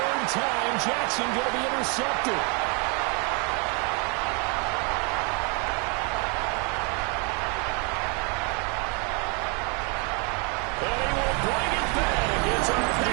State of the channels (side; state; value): left; quieter; 34.8 dB